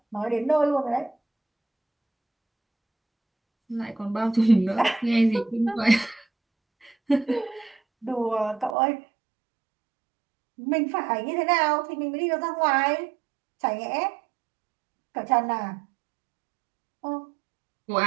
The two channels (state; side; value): drops out; left; at 8.8 s